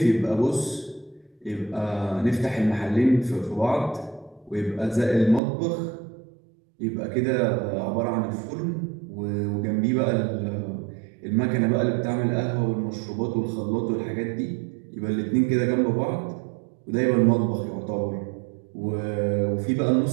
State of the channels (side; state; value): left; drops out; at 5.4 s